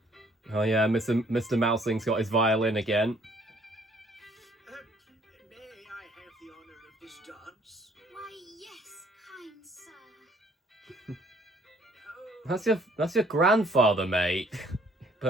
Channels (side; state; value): both; normal; correlation 0.61